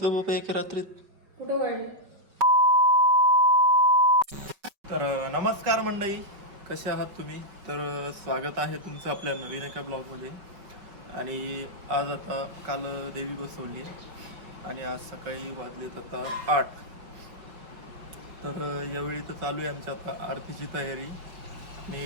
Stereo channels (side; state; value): left; late; 5.1 ms